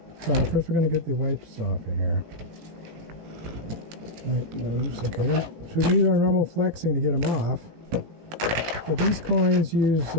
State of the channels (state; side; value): late; left; 18 ms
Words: So first we're going to get the wipes off of here. Right, moves. Okay, then so we use our normal flexing to get them off. But these coins use